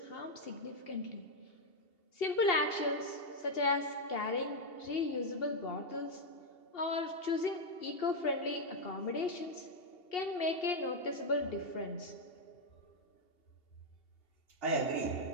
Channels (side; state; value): right; late; 2.8 ms